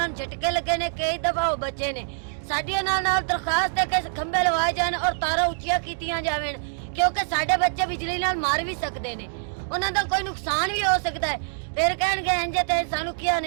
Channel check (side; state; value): left; silent; digital silence